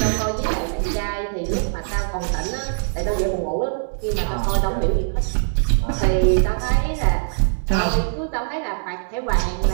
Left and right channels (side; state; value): left; silent; digital silence